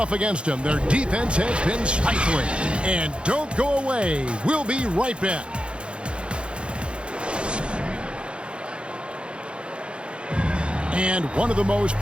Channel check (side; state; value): left; late; 0.057 ms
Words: against them. Their defense has been stifling. And don't go away. We'll be right back. And one of the most